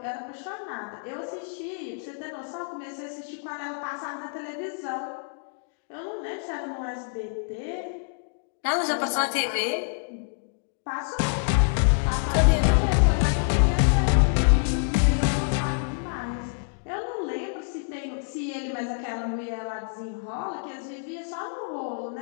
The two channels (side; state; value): right; silent; digital silence